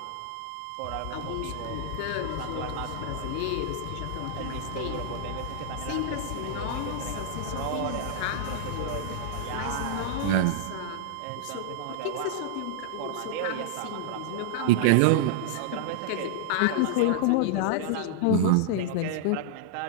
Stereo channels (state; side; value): different; both; correlation -0.01